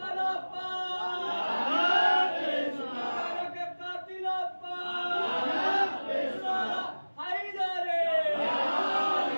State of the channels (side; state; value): both; inverted; correlation -1.00